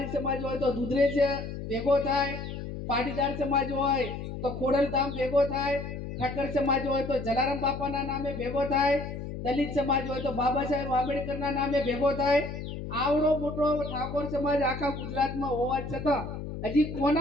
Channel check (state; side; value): noise; left; hum, 7 dB below the sound